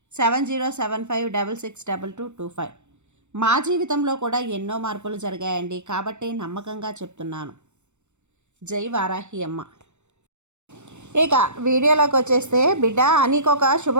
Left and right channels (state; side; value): late; left; 0.83 ms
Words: 7075662225. మా జీవితంలో కూడా ఎన్నో మార్పులు జరిగాయండి, కాబట్టి నమ్మకంగా చెప్తున్నాను. జై వారాహి అమ్మ. ఇక వీడియోలోకి వచ్చేస్తే, బిడ్డ నీకొక